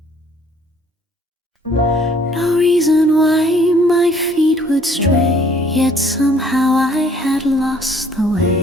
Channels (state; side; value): normal; both; correlation 0.59